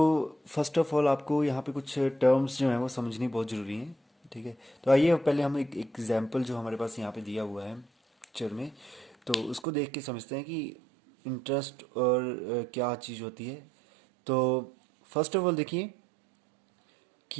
फर्स्ट ऑफ ऑल आपको यहाँ पे कुछ टर्म्स जो हैं वो समझनी बहुत ज़रूरी हैं। ठीक है, तो आइए पहले हम एक एग्जांपल जो हमारे पास यहाँ पे दिया हुआ है पिक्चर में, तो उसको देख के समझते हैं कि इंटरेस्ट और क्या चीज़ होती है। तो फर्स्ट ऑफ ऑल देखिए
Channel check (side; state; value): left; drops out; at 9.7 s